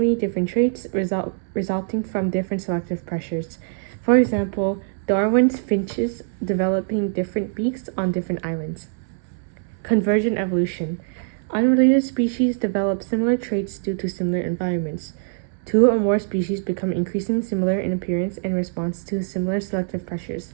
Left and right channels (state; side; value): silent; left; 63 dB below the other